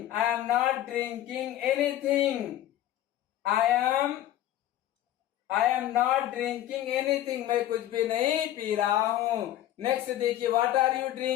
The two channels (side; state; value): right; quieter; 13.0 dB